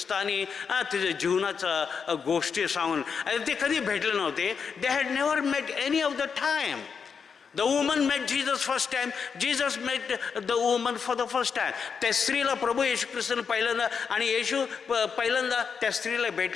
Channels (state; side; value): quieter; right; 6.2 dB